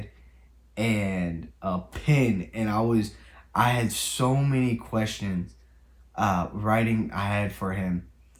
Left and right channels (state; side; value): identical; both; correlation 1.00